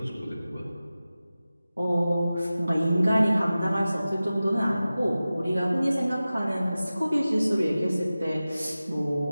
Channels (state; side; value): inverted; both; correlation -0.96